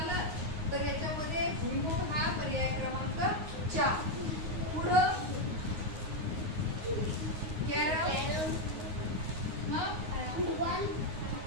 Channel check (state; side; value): late; left; 9.5 ms